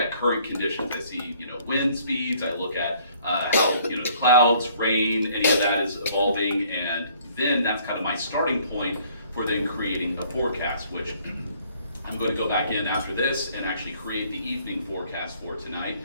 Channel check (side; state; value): both; inverted; correlation -0.60